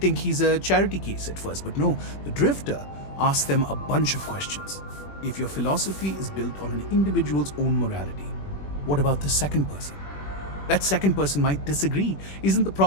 he's a charity case at first, but no, the Drifter asks them a bunch of questions. If your philosophy is built on an individual's own morality, what about the second person? That second person might disagree. Isn't the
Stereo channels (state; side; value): late; right; 21 ms